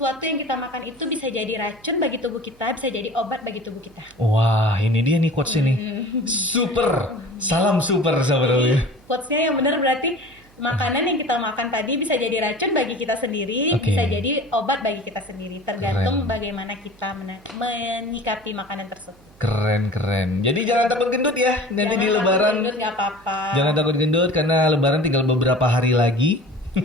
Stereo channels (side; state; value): right; noise; hum, 27 dB below the sound